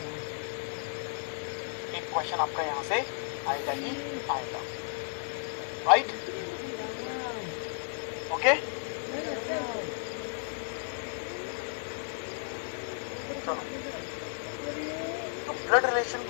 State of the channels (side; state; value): right; silent; 56 dB below the other